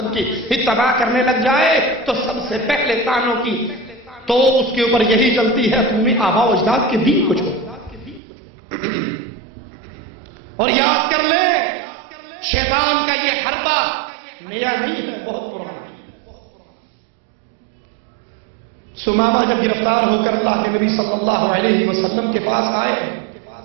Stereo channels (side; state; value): left; drops out; at 8.2 s